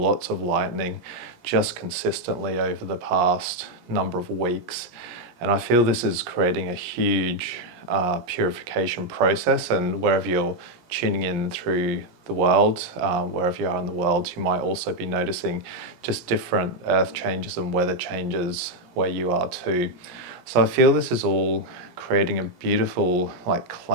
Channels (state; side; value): late; left; 17 ms